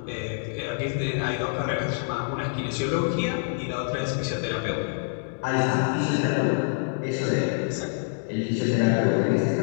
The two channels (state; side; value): silent; right; digital silence